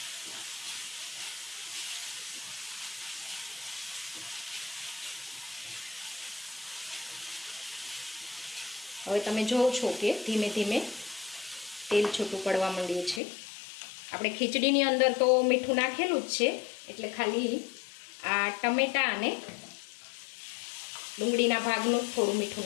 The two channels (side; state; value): right; drops out; at 13.2 s